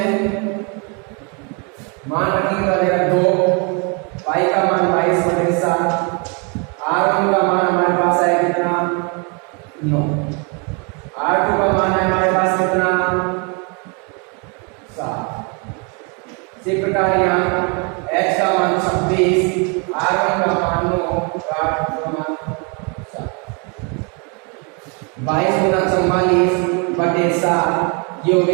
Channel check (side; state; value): left; quieter; 34.2 dB